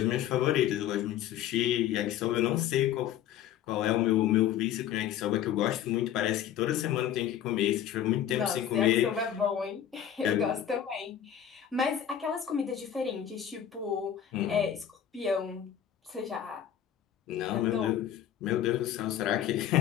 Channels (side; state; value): right; quieter; 10.2 dB